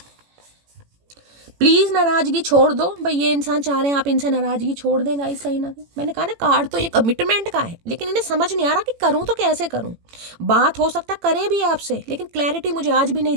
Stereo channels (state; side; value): late; left; 18 ms